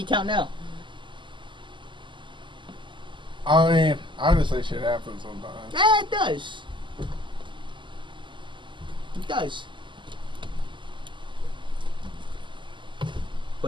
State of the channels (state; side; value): late; left; 0.24 ms